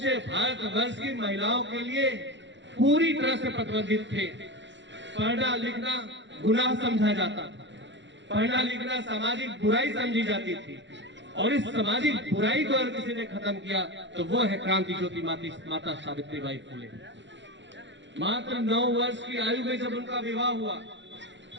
भारतवर्ष की महिलाओं के लिए पूरी तरह से प्रतिबंधित थे। पढ़ना लिखना गुनाह समझा जाता था, पढ़ना लिखना सामाजिक बुराई समझी जाती थी और इस सामाजिक बुराई को अगर किसी ने खत्म किया तो वो है क्रांति ज्योति माता सावित्रीबाई फुले। मात्र 9 वर्ष की आयु में जब उनका विवाह हुआ।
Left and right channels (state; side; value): late; left; 0.53 ms